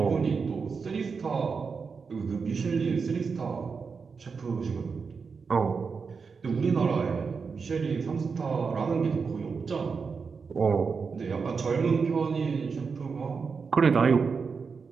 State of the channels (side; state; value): left; quieter; 5.3 dB